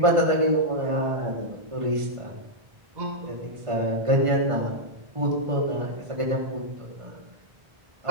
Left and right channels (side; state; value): left; late; 1.5 ms